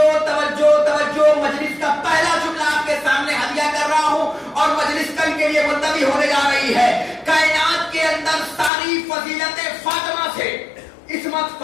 توجہ توجہ۔ مجلس کا پہلا جملہ آپ کے سامنے ہدیہ کر رہا ہوں اور مجلس کل کے لیے ملتوی ہونے جا رہی ہے۔ کائنات کے اندر ساری فضیلتیں فاطمہ سے، عصمت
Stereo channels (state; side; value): drops out; right; at 8.7 s